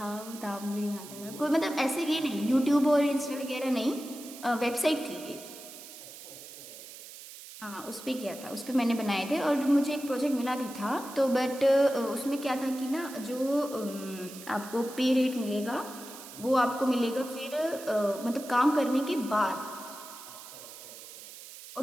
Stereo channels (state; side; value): noise; right; hiss, 15 dB below the sound